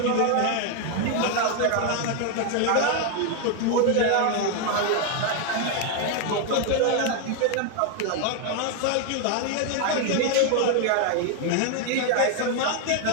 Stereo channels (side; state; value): both; different; correlation 0.01